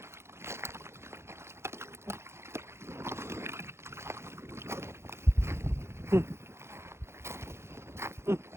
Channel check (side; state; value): left; late; 0.13 ms